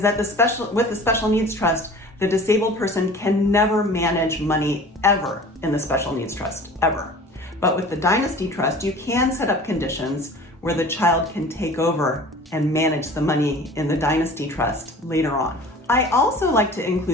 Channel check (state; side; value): normal; both; correlation 0.43